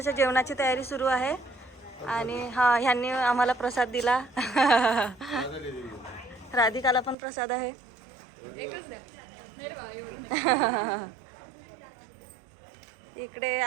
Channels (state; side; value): drops out; left; at 7.2 s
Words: जेवणाची तयारी सुरू आहे आणि ह्यांनी आम्हाला प्रसाद दिला. राधिकाला पण प्रसाद आहे. इकडे